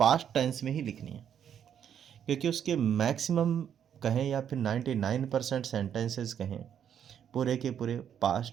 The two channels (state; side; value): quieter; left; 8.9 dB